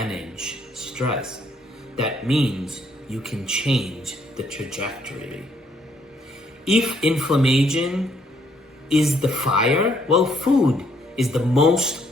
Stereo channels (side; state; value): both; normal; correlation 0.69